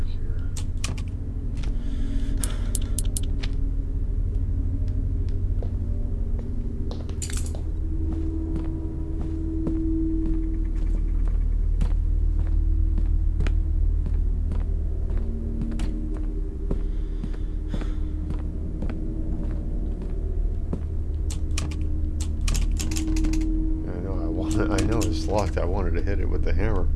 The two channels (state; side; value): identical; both; correlation 1.00